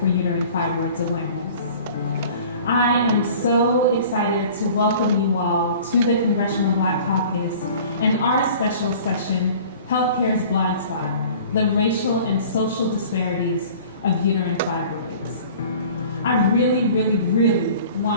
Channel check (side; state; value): both; inverted; correlation -0.46